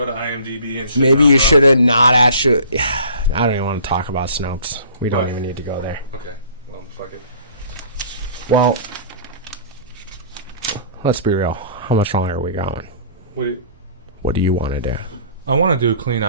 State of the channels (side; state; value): both; inverted; correlation -0.49